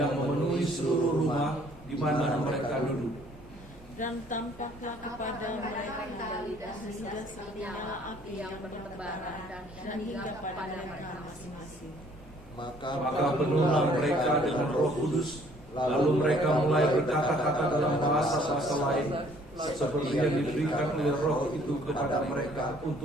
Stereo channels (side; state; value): both; normal; correlation 0.60